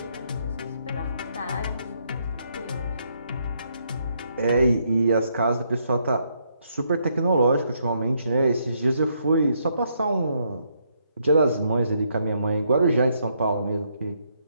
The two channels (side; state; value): both; inverted; correlation -0.74